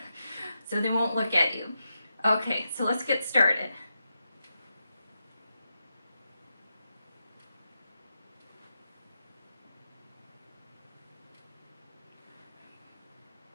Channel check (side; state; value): both; inverted; correlation -0.88